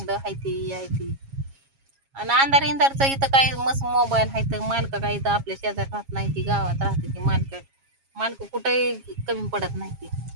हायती यायती आणि अंधार इंधारचं इथं काय मस्त मोबाईल आहे तर मालक काय इथं आपल्या शेजारी राहत नाही ती गावात राहते ती मालक कुठेही कमी पडत नाही ती.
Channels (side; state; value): left; late; 7.3 ms